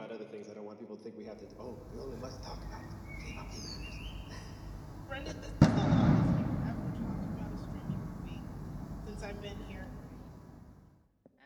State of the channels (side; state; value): both; identical; correlation 1.00